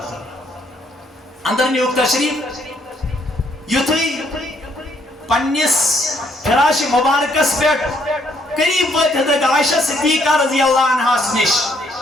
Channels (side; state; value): both; normal; correlation 0.69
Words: اندر نیوک تشریف یتوی پنیس فراش مبارکس پیٹ قریب وقت حضرت عائشہ صدیقہ رضی اللہ عنہ سنش